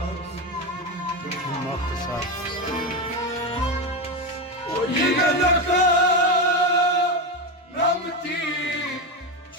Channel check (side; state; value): both; normal; correlation 0.14